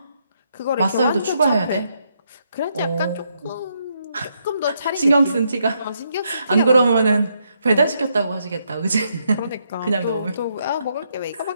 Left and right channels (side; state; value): both; inverted; correlation -0.77